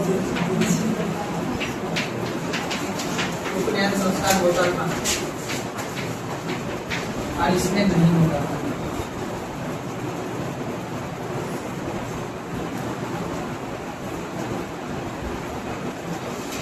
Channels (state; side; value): identical; both; correlation 1.00